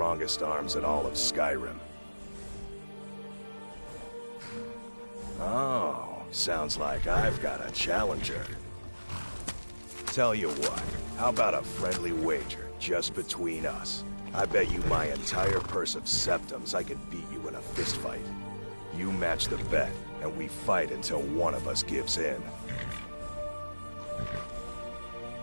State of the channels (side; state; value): both; inverted; correlation -1.00